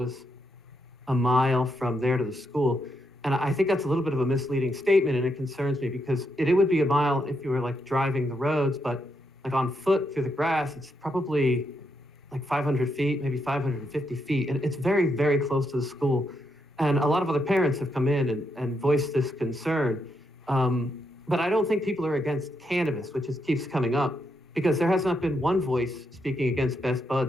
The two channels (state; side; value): normal; both; correlation 0.80